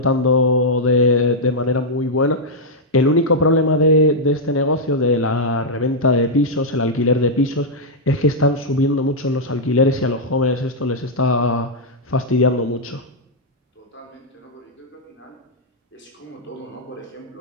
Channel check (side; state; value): both; normal; correlation -0.05